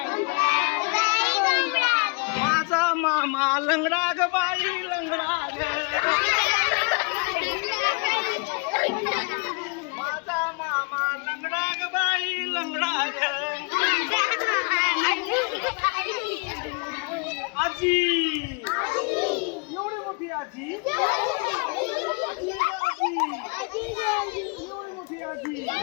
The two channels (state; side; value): quieter; right; 32.7 dB